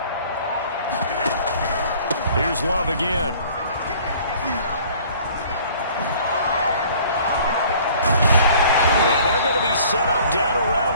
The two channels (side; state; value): both; inverted; correlation -0.52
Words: Here's Love again. And they're going to be set up down